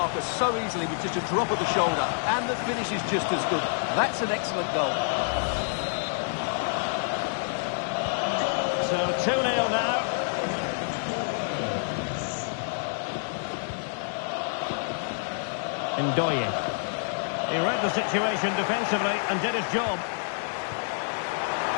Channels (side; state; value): right; silent; digital silence